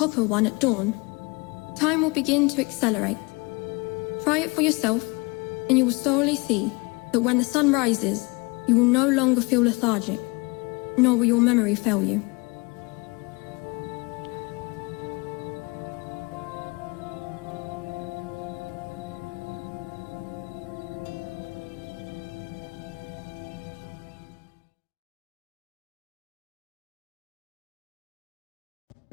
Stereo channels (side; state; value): right; quieter; 27.3 dB